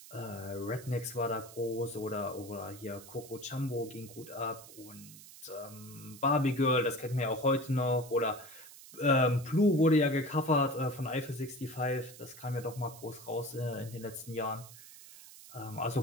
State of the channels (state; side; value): noise; right; hiss, 17 dB below the sound